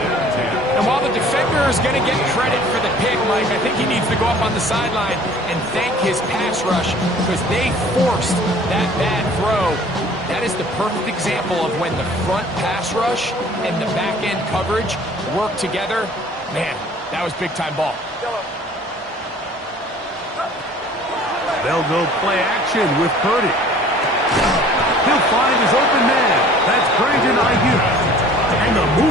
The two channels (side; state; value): both; normal; correlation 0.50